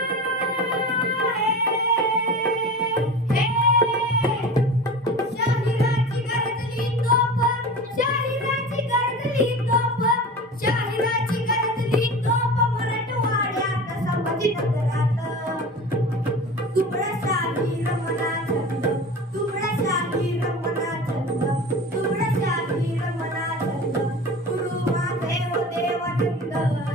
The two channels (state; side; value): normal; both; correlation 0.33